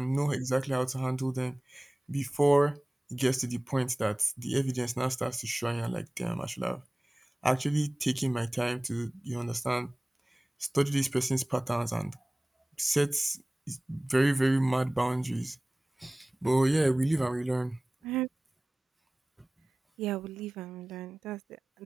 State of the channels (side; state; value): both; normal; correlation 0.98